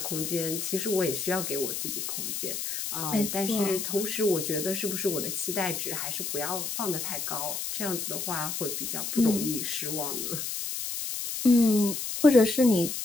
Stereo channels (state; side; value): noise; left; hiss, 4 dB below the sound